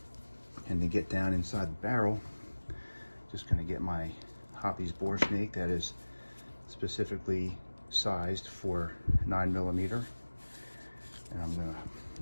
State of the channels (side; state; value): both; inverted; correlation -1.00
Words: And to get down inside the barrel, just going to get my Hoppy's Boresnake that is specifically sized for 9mm. And I'm gonna